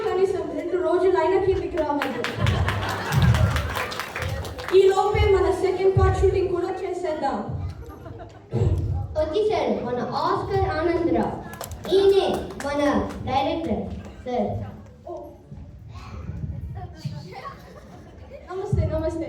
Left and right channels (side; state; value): both; identical; correlation 1.00